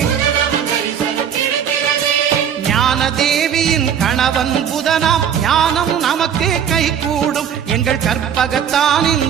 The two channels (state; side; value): quieter; left; 8.4 dB